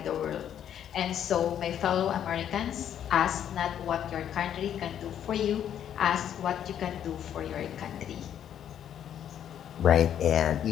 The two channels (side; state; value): right; quieter; 9.8 dB